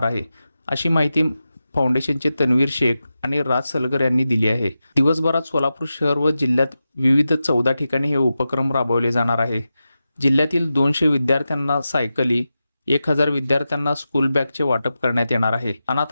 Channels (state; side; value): inverted; both; correlation -0.92